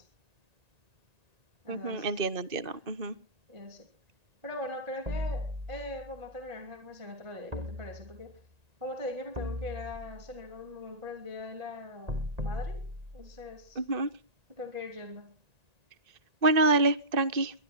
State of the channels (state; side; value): late; left; 1.9 ms